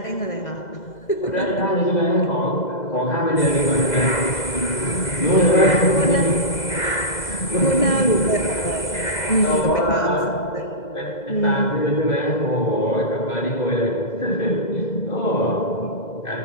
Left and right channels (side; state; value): right; late; 2.0 ms